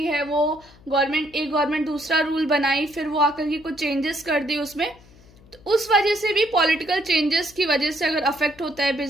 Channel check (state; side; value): noise; left; hum, 25 dB below the sound